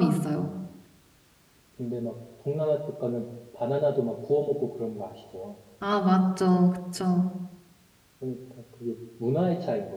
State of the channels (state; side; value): identical; both; correlation 1.00